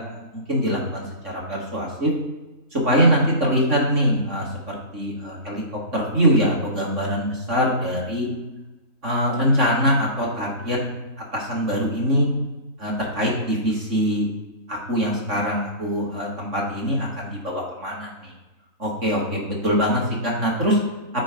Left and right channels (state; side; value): late; left; 3.5 ms